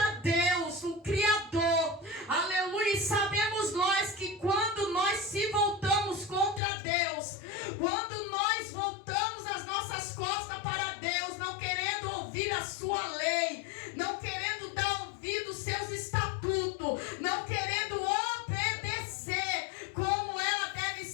Deus, o Criador, aleluia. E sabemos nós que quando nós se voltamos contra Deus, quando nós voltamos as nossas costas para Deus, não querendo ouvir a sua lei, não querendo dar ouvido aos seus estatutos, não querendo obedecer como ela deve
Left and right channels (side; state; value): right; drops out; at 6.6 s